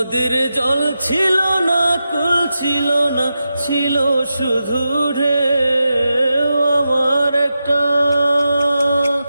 জল ছিল না, কুল ছিল না, ছিল শুধু ঢেউ।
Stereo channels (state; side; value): inverted; both; correlation -0.90